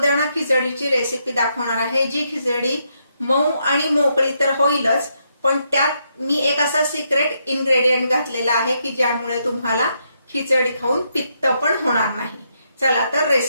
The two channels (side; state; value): both; inverted; correlation -0.78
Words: खिचडीची रेसिपी दाखवणार आहे, जी खिचडी मऊ आणि मोकळी तर होईलच, पण त्यात मी एक असा सिक्रेट इन्ग्रेडियंट घातलेला आहे की ज्यामुळे तुम्हाला खिचडी खाऊन पित्त पण होणार नाही। चला तर